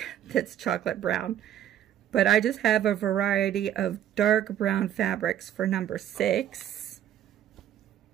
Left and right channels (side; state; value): left; quieter; 10.9 dB